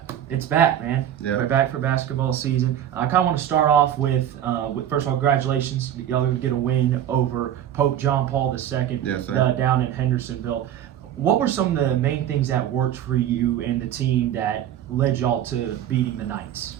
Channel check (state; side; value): quieter; left; 10.8 dB